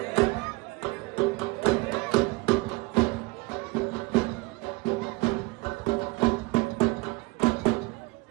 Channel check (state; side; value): quieter; left; 24.7 dB